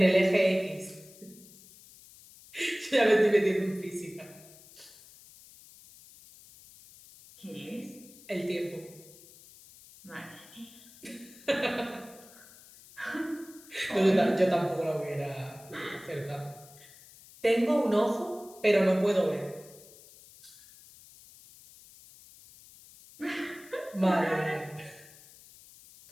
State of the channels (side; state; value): left; noise; hiss, 22 dB below the sound